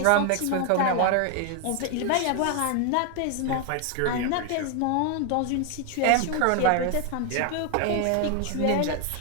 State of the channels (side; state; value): both; different; correlation 0.00